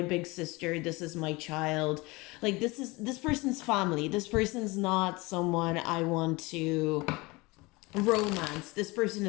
sister, this is my child. Like this person's family. This person's not someone I want to romance. This person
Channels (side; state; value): right; quieter; 23.7 dB